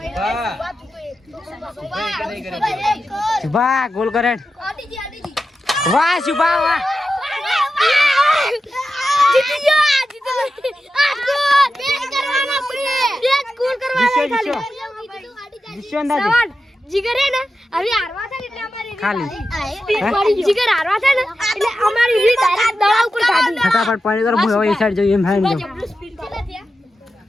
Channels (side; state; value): both; normal; correlation 0.91